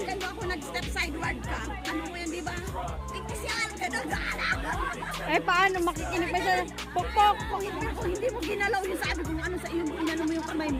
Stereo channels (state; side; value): identical; both; correlation 1.00